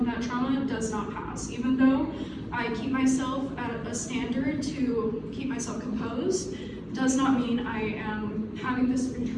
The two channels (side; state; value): both; identical; correlation 1.00